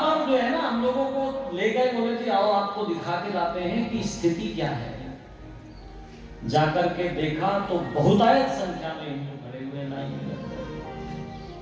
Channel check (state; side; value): identical; both; correlation 1.00